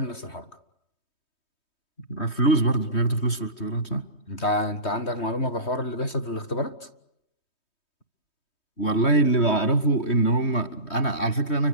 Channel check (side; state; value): right; late; 3.2 ms